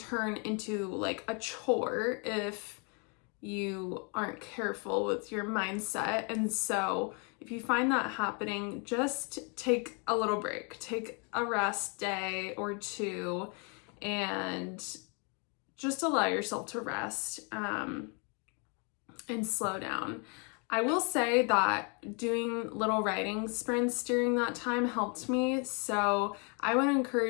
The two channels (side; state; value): right; quieter; 35.4 dB